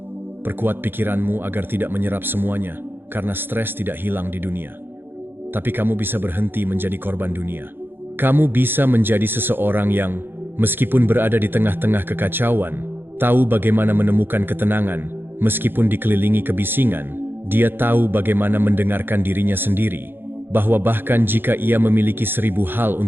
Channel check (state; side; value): late; left; 0.10 ms